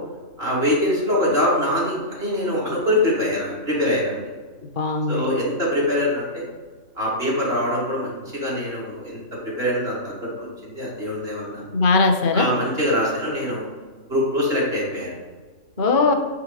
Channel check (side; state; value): left; late; 2.9 ms